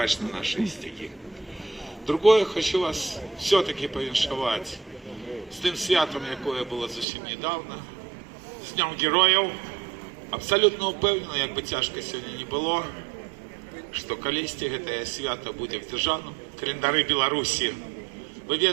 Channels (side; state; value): left; drops out; at 7.1 s